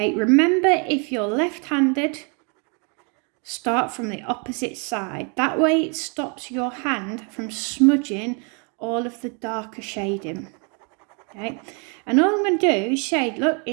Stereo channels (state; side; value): quieter; left; 35.8 dB